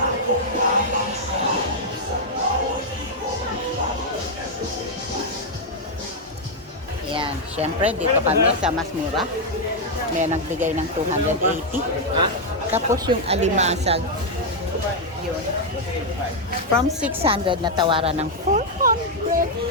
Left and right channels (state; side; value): normal; both; correlation -0.01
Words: Ayan, syempre dito kami sa mas mura. May nagbigay ng 280. Tapos yung alimasag, yun. From 600 na tawaran ng